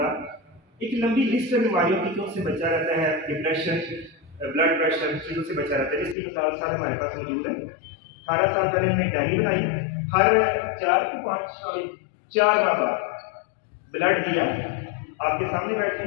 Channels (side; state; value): right; drops out; at 6.2 s